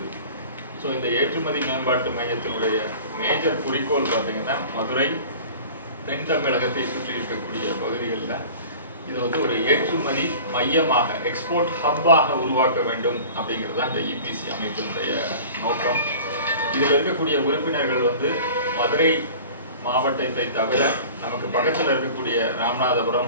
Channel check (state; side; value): inverted; both; correlation -0.41